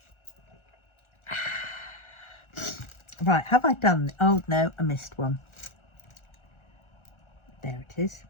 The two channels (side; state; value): right; late; 1.4 ms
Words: Right, have I done... Oh, no, I missed one. There it is.